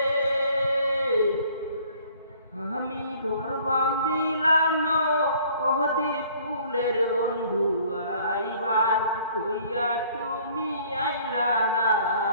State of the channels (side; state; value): both; inverted; correlation -0.56